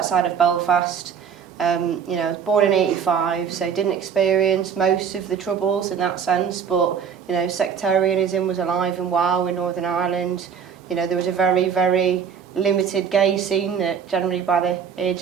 of Belfast. You know, I was born in 85, so didn't experience most of the troubles in that sense, but, you know, sectarianism was alive and well in Northern Ireland. You know, there was a very, very limited gay scene that generally by the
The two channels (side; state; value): left; quieter; 7.1 dB